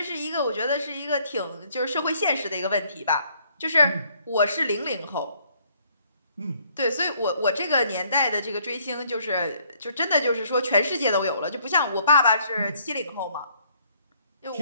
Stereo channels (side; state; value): both; inverted; correlation -0.65